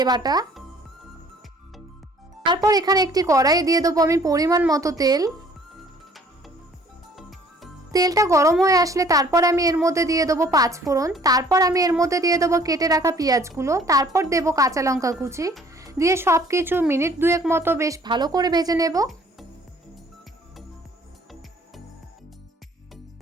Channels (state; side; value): normal; both; correlation 0.56